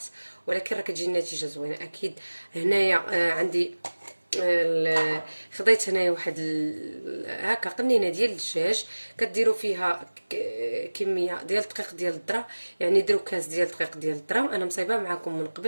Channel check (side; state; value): both; inverted; correlation -1.00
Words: ولكن راه كتجي النتيجه زوينه اكيد. هنايا عندي خديت هنايا واحد هكا قنينه ديال الدجاج، كديروا فيها كميه ديال الدقيق ديال الذره، يعني ديروا كاس ديال الدقيق ديال الذره. انا مصايبه معكم من